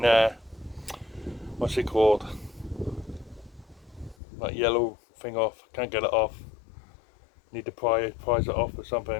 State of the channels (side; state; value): right; drops out; at 4.2 s